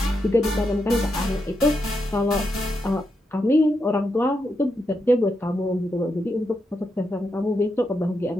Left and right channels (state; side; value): normal; both; correlation 0.84